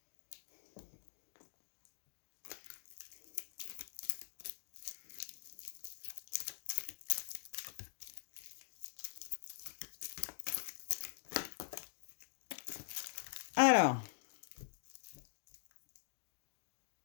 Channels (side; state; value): right; silent; digital silence